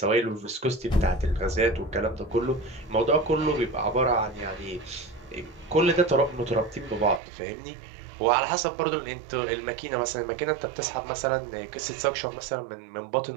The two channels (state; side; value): drops out; left; at 7.2 s